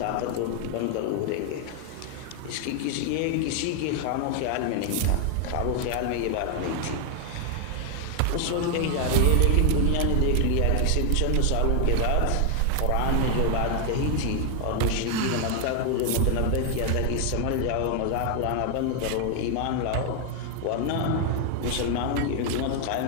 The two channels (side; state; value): both; different; correlation 0.00